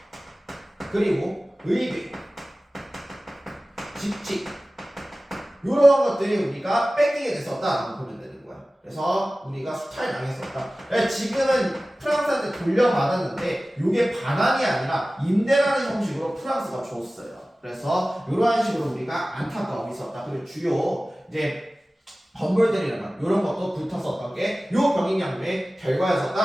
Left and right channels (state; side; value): normal; both; correlation 0.97